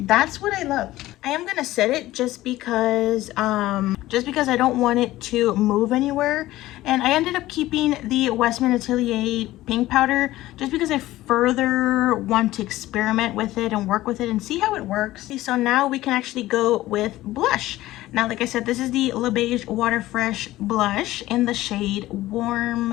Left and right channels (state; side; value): quieter; right; 16.3 dB